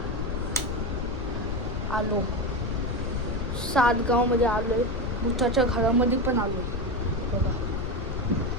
आलो सातगावमध्ये, आलोय भुताच्या घरामध्ये पण आलो. बघा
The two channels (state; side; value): noise; left; rumble, 3 dB below the sound